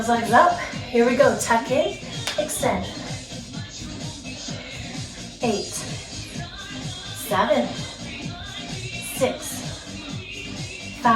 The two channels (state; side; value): identical; both; correlation 1.00